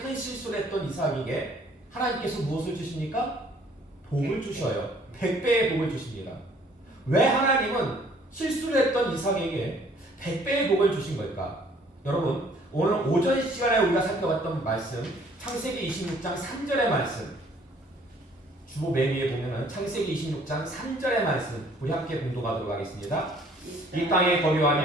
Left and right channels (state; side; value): normal; both; correlation 0.59